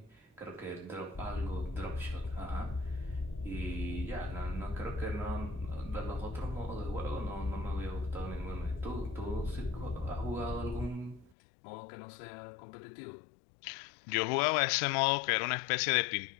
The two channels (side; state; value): right; drops out; at 11.3 s